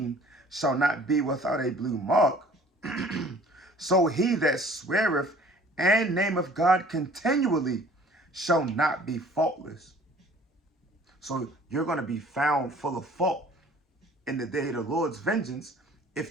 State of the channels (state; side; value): normal; both; correlation 0.52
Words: shall not be without a blue mark, so he that sweareth and nameth God continually shall not be faultless. So you're going to be found full of fault in the day of the Lord's vengeance